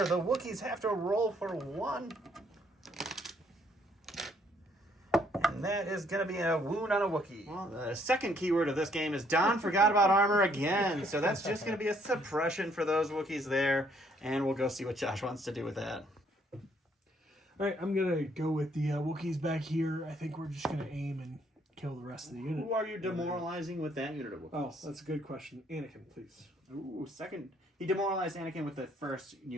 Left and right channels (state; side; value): normal; both; correlation 0.67